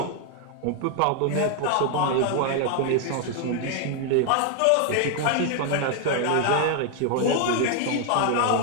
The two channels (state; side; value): different; both; correlation 0.00